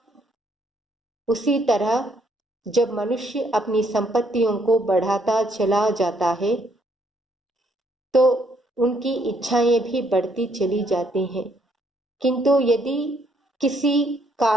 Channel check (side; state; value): both; normal; correlation 0.70